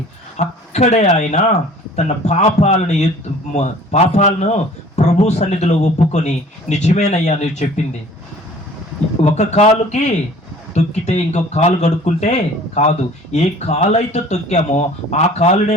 అక్కడే ఆయన తన పాపాలను ప్రభు సన్నిధిలో ఒప్పుకొని, నిజమేనయ్యా నువ్వు చెప్పింది, ఒక కాలుకి తొక్కితే ఇంకో కాలు కడుక్కుంటే కాదు. ఏ కాలు అయితే తొక్కామో ఆ కాలునే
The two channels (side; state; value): both; normal; correlation 0.49